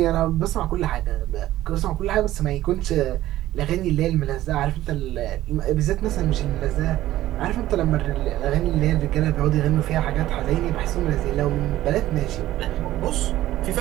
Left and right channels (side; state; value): left; quieter; 14.6 dB